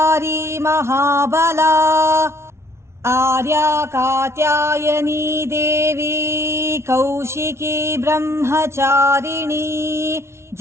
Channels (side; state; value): left; late; 0.13 ms